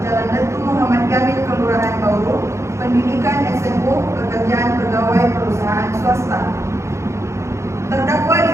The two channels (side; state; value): left; late; 0.14 ms